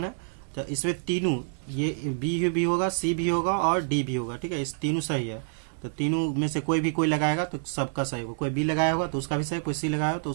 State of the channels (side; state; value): left; silent; 60 dB below the other